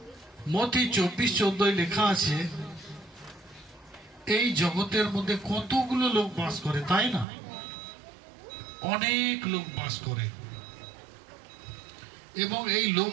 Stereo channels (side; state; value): left; drops out; at 7.2 s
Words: মথি 24:14 লেখা আছে, এই জগতের মধ্যে কতগুলো লোক বাস করে, তাই না? অনেক লোক বাস করে, এবং এই লোক